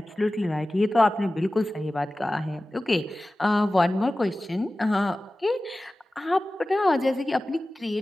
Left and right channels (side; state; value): both; normal; correlation 0.96